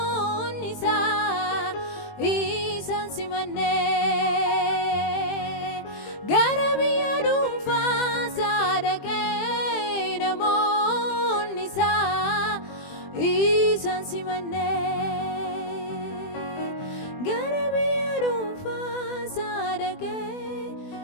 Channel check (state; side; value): late; right; 20 ms